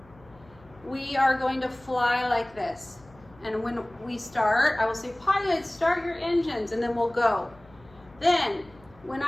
we are going to fly like this. And when we start, I will say, pilots, start your engines, and then we'll go. Then, when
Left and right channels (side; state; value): left; noise; hum, 26 dB below the sound